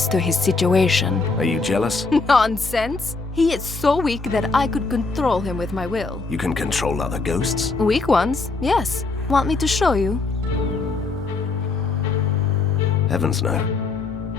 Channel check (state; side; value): quieter; right; 3.9 dB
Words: to his situation. Are you jealous? Nonsense! He is so weak that I could control him with my will. You can control other ghosts? Weak ones, yes. Want me to show you? Heavens no.